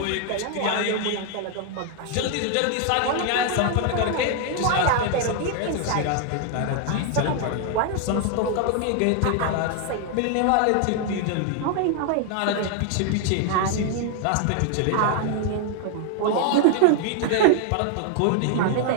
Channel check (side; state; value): both; different; correlation 0.00